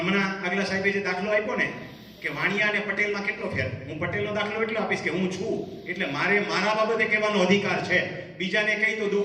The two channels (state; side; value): identical; both; correlation 1.00